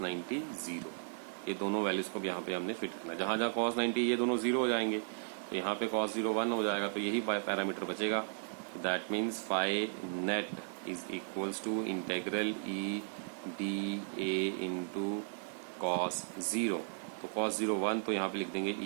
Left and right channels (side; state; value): left; silent; digital silence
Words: 90 0। ये दोनों वैल्यूज को भी यहाँ पे हमने फिट करना। जहाँ जहाँ कॉस 90 ये दोनों 0 हो जाएंगे तो यहाँ पे कॉस 0 1 हो जाएगा, तो यही पैरामीटर बचेगा। That means phi net is equals to integral E D A into cos 0। तो कॉस 0 1 तो यहाँ पे लिख देंगे